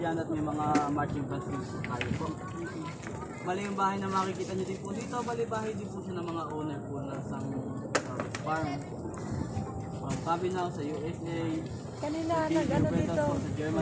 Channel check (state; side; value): identical; both; correlation 1.00